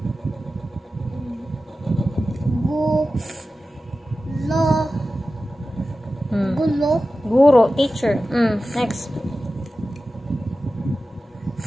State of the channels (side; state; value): both; normal; correlation 0.94